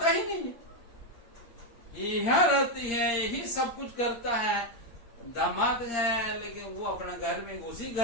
ही नहीं, यहाँ रहती है, यही सब कुछ करता है। दामाद है लेकिन वो अपना घर में, उसी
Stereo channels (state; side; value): late; right; 8.6 ms